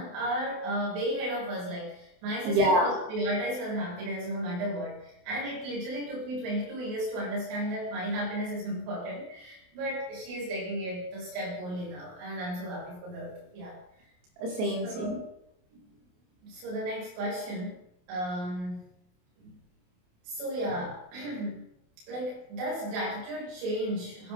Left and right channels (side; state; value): left; late; 28 ms